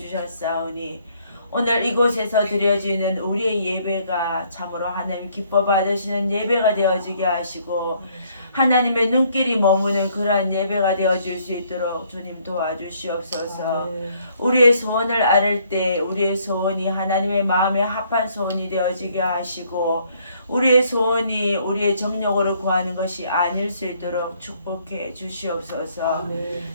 오늘 이곳에서 드려지는 우리의 예배가 참으로 하나님 기뻐 받으시는 예배가 되어지게 하시고 하나님의 눈길이 머무는 그러한 예배가 되어질 수 있도록 주님 도와주시옵소서. 우리의 소원을 아를 때 우리의 소원이 하나님의 마음에 합한 소원이 되어지게 하시고 우리의 소원이 우리의 정력으로 구하는 것이 아닐 수 있도록 축복해 주시옵소서.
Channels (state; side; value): inverted; both; correlation -0.66